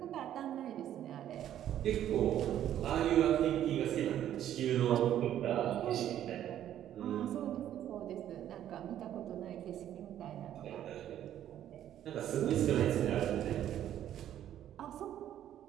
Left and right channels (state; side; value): quieter; left; 11.3 dB